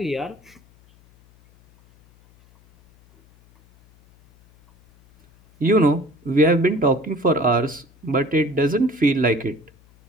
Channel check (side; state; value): left; noise; hum, 30 dB below the sound